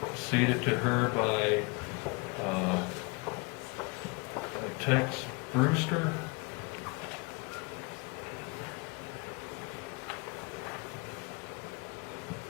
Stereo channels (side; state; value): right; quieter; 28.7 dB